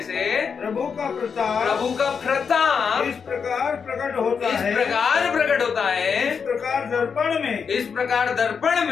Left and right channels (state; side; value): quieter; right; 6.2 dB